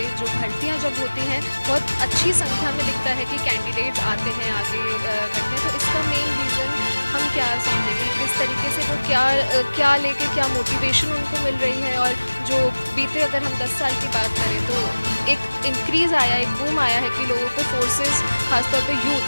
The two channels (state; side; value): inverted; both; correlation -1.00